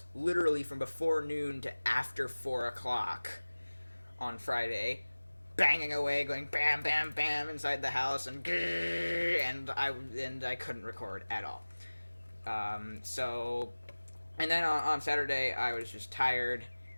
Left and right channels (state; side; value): inverted; both; correlation -1.00